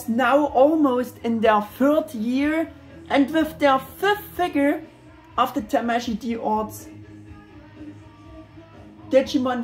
now almost in their 3rd year, and with their 5th figure of the Tamashii D-Arts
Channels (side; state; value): both; identical; correlation 1.00